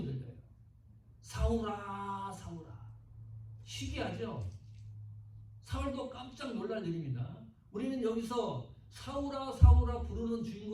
들려요. 사울아 사울아. 희귀하죠? 사울도 깜짝 놀랄 일입니다. 우리는 여기서 사울아 사울아 부르는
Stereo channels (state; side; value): identical; both; correlation 1.00